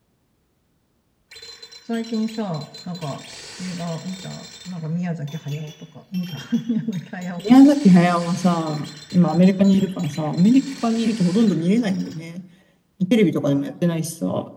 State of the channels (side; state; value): both; identical; correlation 1.00